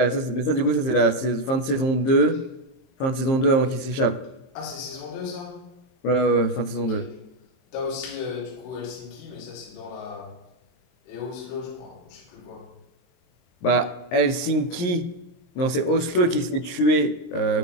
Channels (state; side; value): late; right; 23 ms